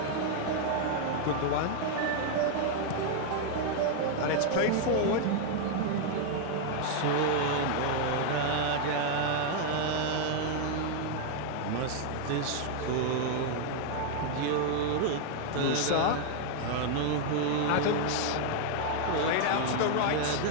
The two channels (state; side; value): different; both; correlation 0.00